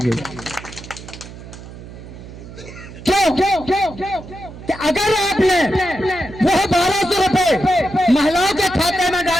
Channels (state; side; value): noise; right; hum, 15 dB below the sound